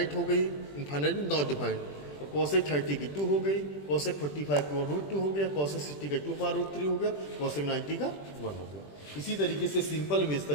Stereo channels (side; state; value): right; late; 20 ms